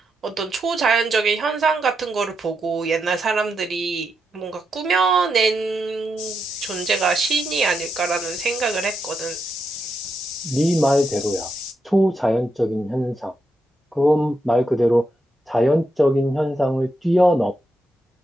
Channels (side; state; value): both; normal; correlation 0.83